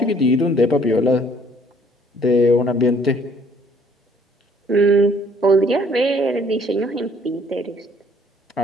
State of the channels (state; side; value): normal; both; correlation 0.60